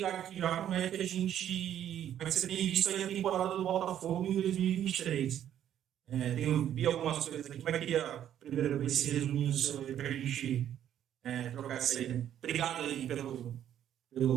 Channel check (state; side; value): quieter; left; 10.6 dB